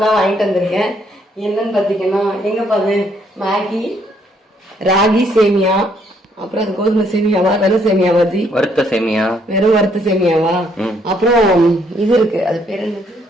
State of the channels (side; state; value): both; normal; correlation 0.69